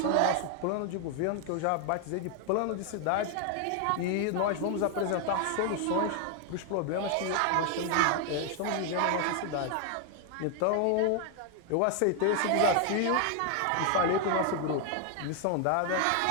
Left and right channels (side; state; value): both; different; correlation 0.01